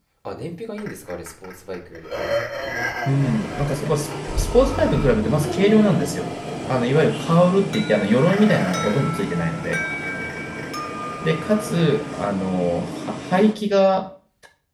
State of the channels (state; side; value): identical; both; correlation 1.00